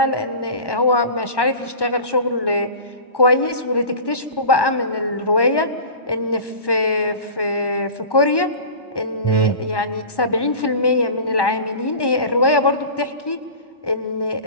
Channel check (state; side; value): late; right; 1.1 ms